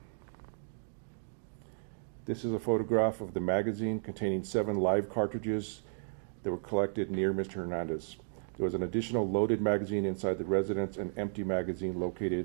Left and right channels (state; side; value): silent; left; digital silence